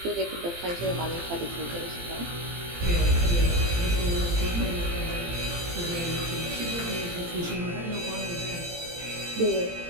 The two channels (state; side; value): late; left; 18 ms